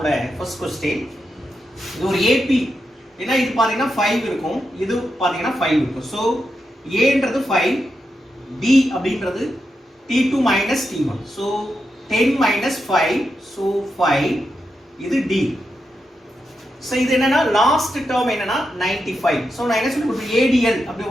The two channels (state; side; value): normal; both; correlation 0.86